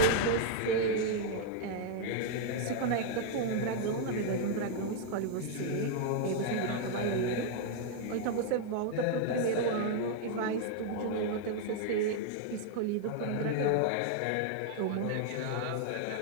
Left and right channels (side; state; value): both; different; correlation 0.00